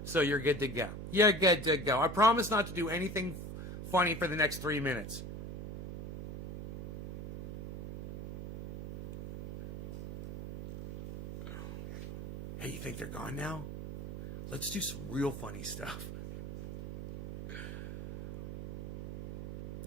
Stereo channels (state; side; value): noise; right; hum, 7 dB below the sound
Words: So you're good to go. You're good to go. I promise not to do anything funny for the next 3 minutes. Hey, you think they're gone now? Let's do some real funny stuff.